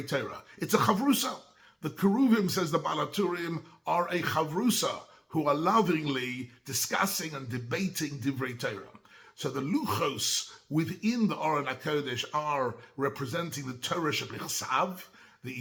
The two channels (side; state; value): both; identical; correlation 1.00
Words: Torah. It's a chavrusa. The keruvim, says the Baal HaTurim, are a chavrusa, who are lovingly discussing and debating divrei Torah. So the luchos within the Aron HaKodesh are representing the Torah shebichsav, the